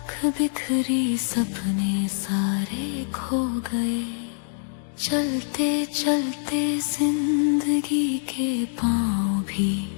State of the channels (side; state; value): right; silent; digital silence